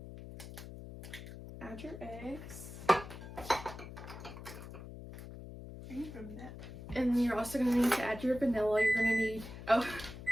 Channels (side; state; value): left; noise; hum, 12 dB below the sound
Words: Add your eggs. And you're also going to need to add your vanilla. You're going to need... Oh,